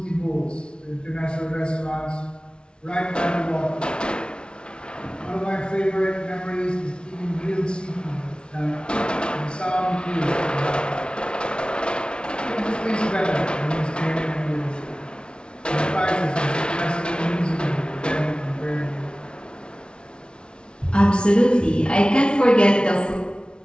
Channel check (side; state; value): right; late; 0.056 ms